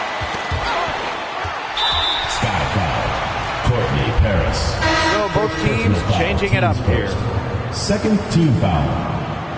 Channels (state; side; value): identical; both; correlation 1.00